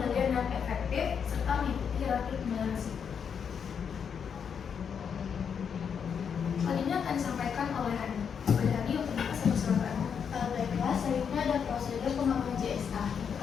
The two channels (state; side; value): quieter; right; 7.1 dB